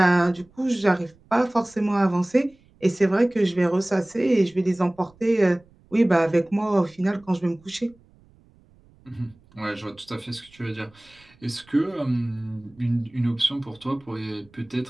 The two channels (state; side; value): noise; right; rumble, 29 dB below the sound